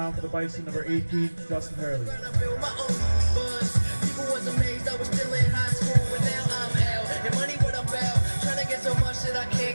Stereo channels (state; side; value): inverted; both; correlation -1.00